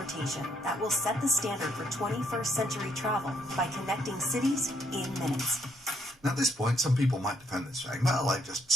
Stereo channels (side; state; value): both; normal; correlation 0.72